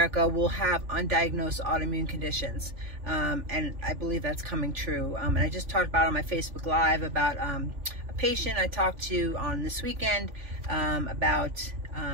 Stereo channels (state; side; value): late; left; 3.4 ms